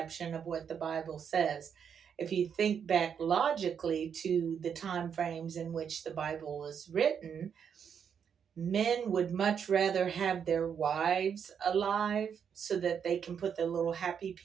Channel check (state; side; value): quieter; left; 7.5 dB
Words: of what the Bible says. If you think back logically to the time frames in which the Bible was written, men would much rather have their wives alive so that they can put their little happy